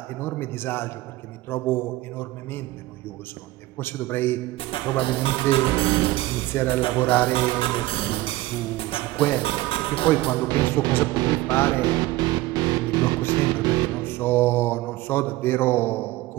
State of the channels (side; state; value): left; quieter; 17.9 dB